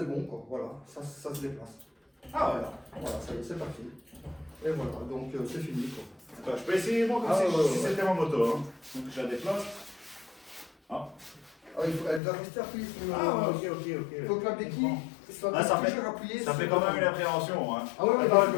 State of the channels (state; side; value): drops out; right; at 12.2 s